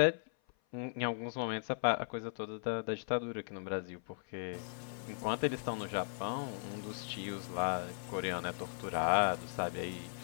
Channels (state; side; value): silent; right; 53 dB below the other